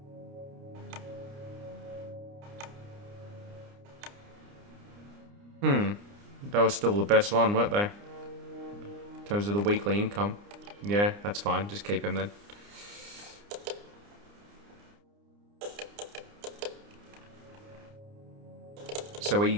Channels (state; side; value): late; left; 29 ms